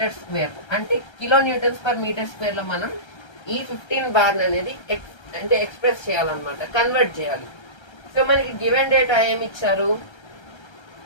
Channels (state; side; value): late; right; 1.3 ms